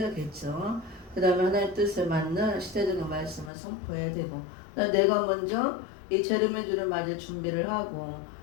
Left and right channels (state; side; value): drops out; right; at 3.5 s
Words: 그 다음에 하나님의 뜻에 맞는 시대적인 말씀을 선포해야 되고, 내가 먼저 이 재림의 주를 맞을 준비를 하고